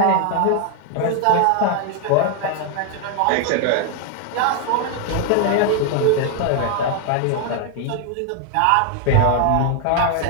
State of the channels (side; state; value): both; different; correlation 0.01